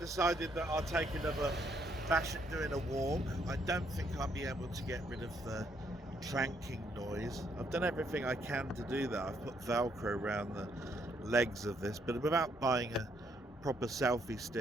that I'll take another bash at doing a walk. I don't think I'll be able to get rid of the clanking noise. I've done everything I can to do that. I've put Velcro around the legs of this, but without buying a proper selfie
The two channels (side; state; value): both; normal; correlation 0.72